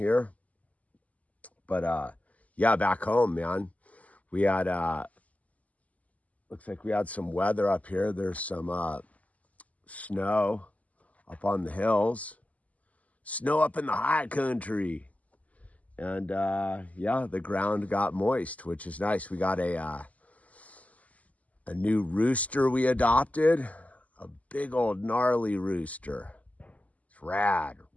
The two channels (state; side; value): late; right; 0.073 ms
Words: But yeah, back home, man. We had looks like we had some weather up here. There's some snow up on the hills, snow up in the high country, and yeah, the ground got moist, which is nice. We got a new rooster we adopted, a big old gnarly rooster. It's rad,